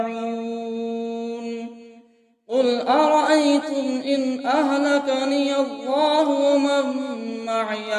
قل أرأيتم إن أهلكني الله ومن معي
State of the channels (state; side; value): identical; both; correlation 1.00